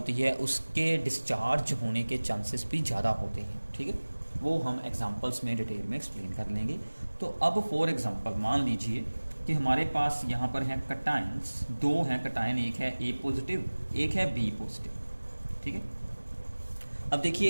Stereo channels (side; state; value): both; inverted; correlation -1.00